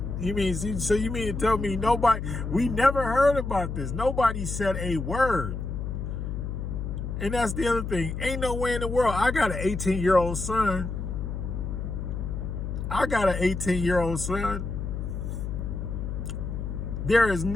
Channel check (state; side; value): noise; left; hum, 4 dB below the sound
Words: You mean to tell me we never heard about this. Nobody said a word. And that's the other thing. Ain't no way in the world. I got an 18-year-old son. There is